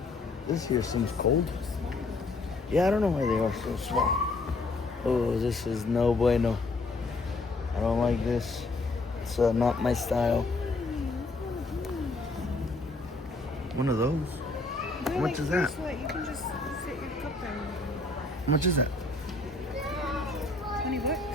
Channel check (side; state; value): right; quieter; 3.3 dB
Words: here seems cold. Yeah, I don't know why they are so small. Oh, this is no bueno. I don't like this. It's not my style. One of those? How much is that? You can just fit your cup there. How much is that? $20.